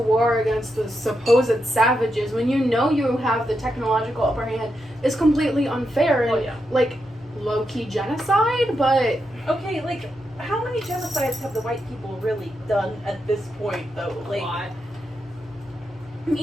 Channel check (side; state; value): both; normal; correlation 0.85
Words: against the supposed savages, when you know you have the technological upper hand, is completely unfair and, Oh, yeah. like, low-key genocide, but... Okay, like, how many genocides have the white people really done at this point, though? Like,